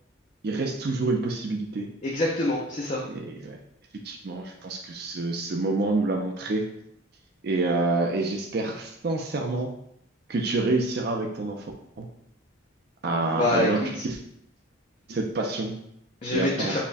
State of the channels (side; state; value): both; normal; correlation 0.37